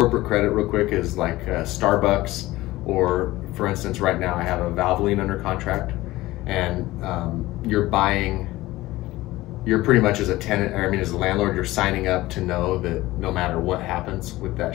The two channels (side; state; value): right; quieter; 17.9 dB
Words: credit real quick is like Starbucks, or for instance, right now I have a Valvoline under contract, and you're pretty much as a tenant, as a landlord, you're signing up to know that no matter what happens with that